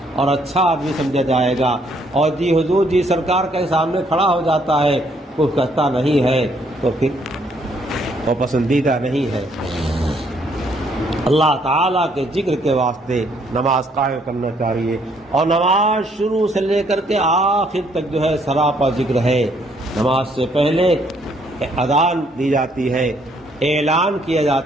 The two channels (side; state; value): both; normal; correlation 0.67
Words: اور اچھا آدمی سمجھا جائے گا۔ اور جی حضور جی سرکار کے سامنے کھڑا ہو جاتا ہے، کچھ کہتا نہیں ہے، تو پھر وہ پسندیدہ نہیں ہے۔ اللہ تعالیٰ کے ذکر کے واسطے نماز قائم کرنا چاہیے، اور نماز شروع سے لے کر کے آخر تک جو ہے سراپا ذکر ہے۔ نماز سے پہلے اذان دی جاتی ہے، اعلان کیا